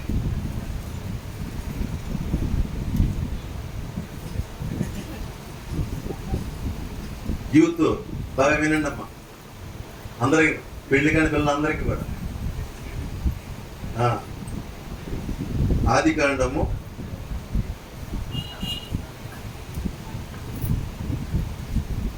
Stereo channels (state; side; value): identical; both; correlation 1.00